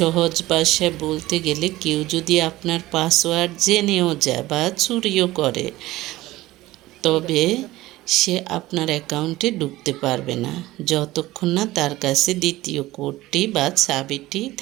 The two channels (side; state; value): left; quieter; 17.4 dB